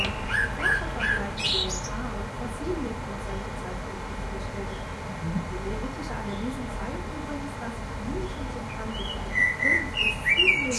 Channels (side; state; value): both; identical; correlation 1.00